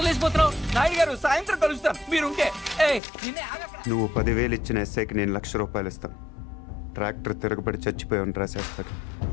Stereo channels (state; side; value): drops out; right; at 3.0 s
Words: లేచిపోతున్నావు? నాయుడు గారు, సాయంత్రం కలుస్తాను మీరుంటే. నువ్వు 10,000 ఇచ్చిన ఎస్ఐకి నేను ₹1,00,000 ఇస్తాను. ట్రాక్టర్ తిరగబడి చచ్చిపోయామని రాసేస్తాడు.